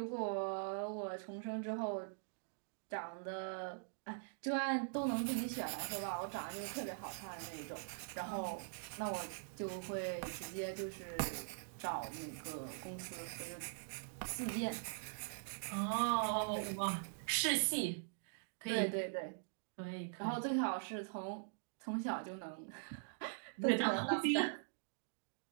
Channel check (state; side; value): silent; left; digital silence